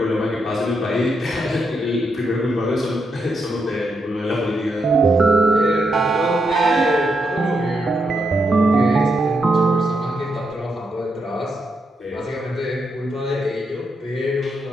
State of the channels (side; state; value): both; normal; correlation 0.81